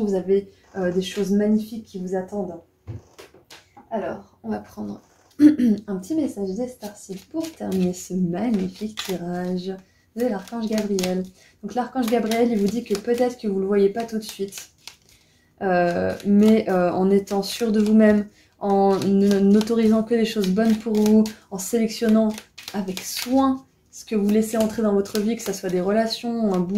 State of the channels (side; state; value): both; identical; correlation 1.00